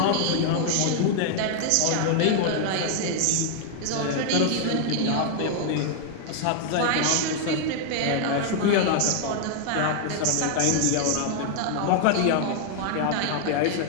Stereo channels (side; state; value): both; different; correlation 0.00